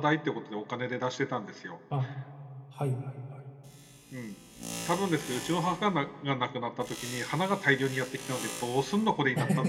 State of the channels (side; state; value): both; identical; correlation 1.00